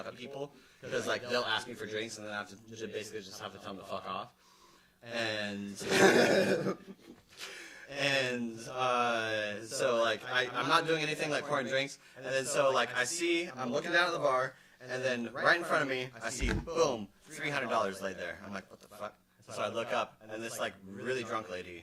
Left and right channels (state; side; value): identical; both; correlation 1.00